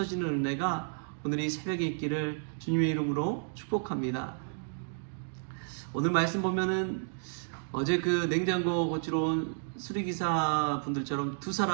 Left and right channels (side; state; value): left; silent; digital silence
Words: 은혜가 오늘 이 새벽에 있기를 주님의 이름으로 축복합니다. 오늘 말씀 보면은 어제 그 냉장고 고치러 온 수리기사 분들처럼 두